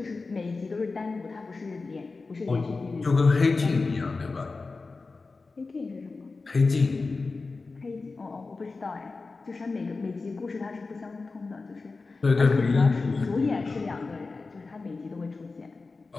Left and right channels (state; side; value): quieter; right; 3.9 dB